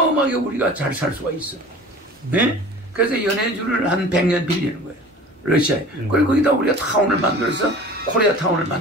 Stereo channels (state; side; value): normal; both; correlation 0.41